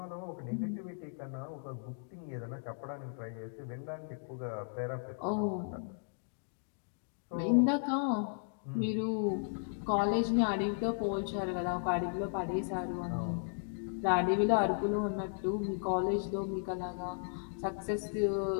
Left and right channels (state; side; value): silent; right; digital silence